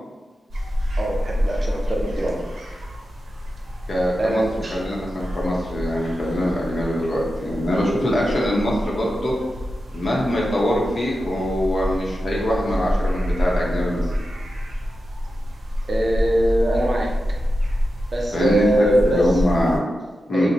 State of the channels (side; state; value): both; normal; correlation 0.91